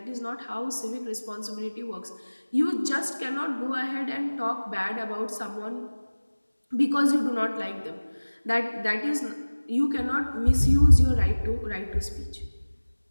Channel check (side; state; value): both; inverted; correlation -1.00